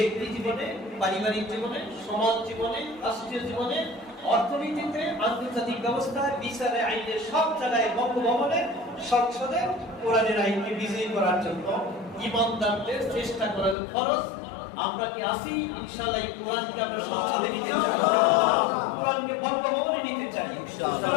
জীবনে, পারিবারিক জীবনে, সমাজ জীবনে, রাষ্ট্রীয় জীবনে, অর্থনীতিতে, আন্তর্জাতিক ব্যবস্থায়, বিচারে, আইনে, সব জায়গায়, বঙ্গভবনে, সংসদে কোরআনের আইনকে বিজয়ী করার জন্য ঈমানদারদের চেষ্টা করা ফরজ। আমরা কি আসি? ইনশাআল্লাহ এই কোরআনকে আমরা সংসদে নিতে চাই, কোরআনকে বঙ্গভবনে নিতে চাই,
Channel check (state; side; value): drops out; right; at 13.8 s